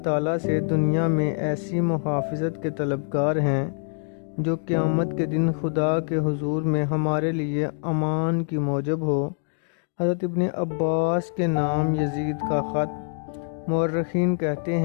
تعالیٰ سے دنیا میں ایسی محافظت کے طلبگار ہیں جو قیامت کے دن خدا کے حضور میں ہمارے لیے امان کی موجب ہو۔ حضرت ابن عباس کے نام یزید کا خط۔ مورخین کہتے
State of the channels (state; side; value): silent; right; digital silence